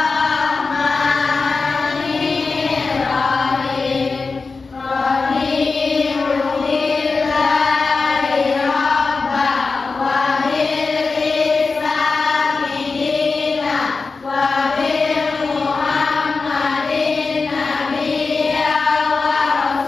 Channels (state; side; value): quieter; right; 4.3 dB